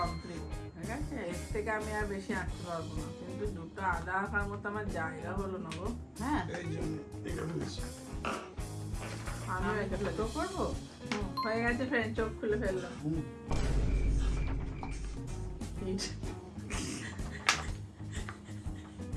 ঠিক আছে? এর থেকে আমি আর বেশি আঁকতে পারবো না, কিন্তু দুটো আদা আঁকার মতো আমার জায়গা হলো না গো। হ্যাঁ, এই জন্য এটা ফেলেছি। আমি এটা তো করবো। হয়ে গেছে ফ্রেন্ড, চোখ খুলে ফেললাম। হুম।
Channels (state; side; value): identical; both; correlation 1.00